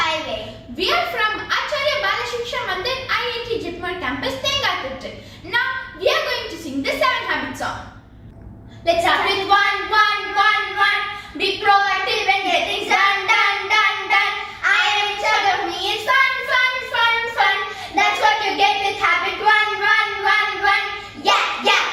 We are from Achariya Bala Siksha Mandir IIT Jitmar campus, Tengatirthi. Now we are going to sing the 7 habits song. Let's start with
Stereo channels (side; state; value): both; identical; correlation 1.00